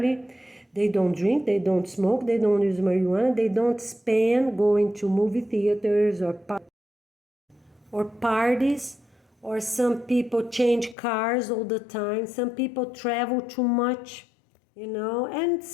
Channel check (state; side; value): drops out; right; at 11.0 s